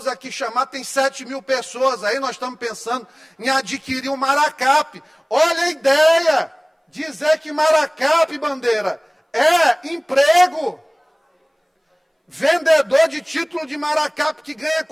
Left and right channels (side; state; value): both; identical; correlation 1.00